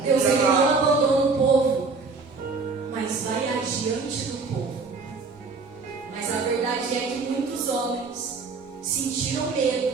Deus, ele não abandona o povo, mas vai adiante do povo. Mas a verdade é que muitos homens sentiram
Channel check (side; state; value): left; quieter; 4.3 dB